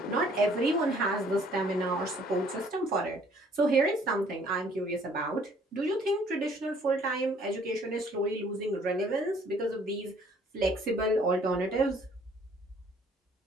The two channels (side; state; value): both; normal; correlation 0.59